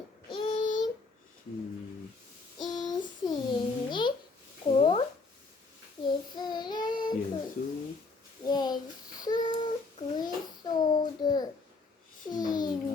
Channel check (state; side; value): quieter; right; 3.9 dB